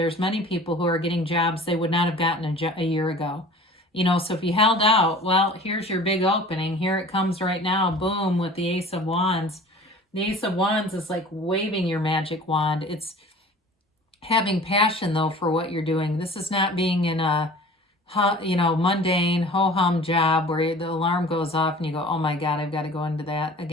many people who are getting jobs they would not have gotten a year ago. So if you held out, well, here's your big opening. Here it comes right now. Boom, with the Ace of Wands. The Ace of Wands is like waving your magic wand. It's having passion, though, for what you're doing. This is not being in a mundane ho-hum job where the alarm goes off and you go, oh my God, I've got to go into that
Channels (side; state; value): both; normal; correlation 0.43